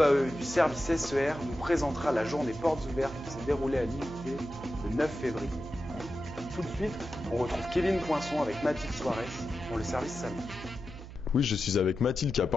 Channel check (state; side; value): noise; right; hum, 13 dB below the sound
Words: du service SER nous présentera la journée portes ouvertes qui s'est déroulée à l'IUT le 9 février. Tout de suite, on retrouve Kevin Poinçon avec Mathilde Soares pour le service salon. Oui, je suis avec Mathilde qui a